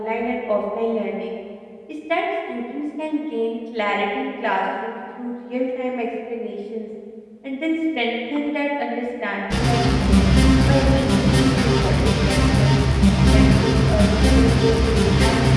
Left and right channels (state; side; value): identical; both; correlation 1.00